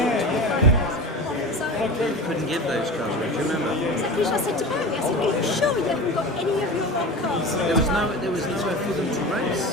You couldn't give those cars, do you remember? Exactly, I said to Barry, I said, are you sure you haven't got any of your own cars? There was nowhere for them to race.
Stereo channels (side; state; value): both; normal; correlation 0.30